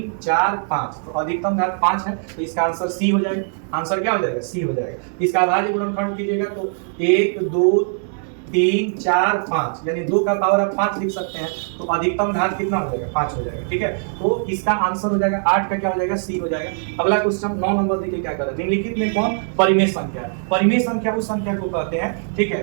4 5, तो अधिकतम घात 5 है, तो इसका आंसर सी हो जाएगा। आंसर क्या हो जाएगा, सी हो जाएगा। इसका अभाज्य गुणनखंड कीजिएगा तो 1 2 3 4 5, यानी 2 का पावर आप 5 लिख सकते हैं, तो अधिकतम घात कितना हो जाएगा, 5 हो जाएगा, ठीक है। तो इसका आंसर हो जाएगा 8 का क्या हो जाएगा, सी हो जाएगा। अगला क्वेश्चन 9 नंबर देखिए क्या कर रहा है। निम्नलिखित में कौन परिमेय संख्या है। परिमेय संख्या उस संख्या को कहते हैं, ठीक है,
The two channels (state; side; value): silent; left; 65 dB below the other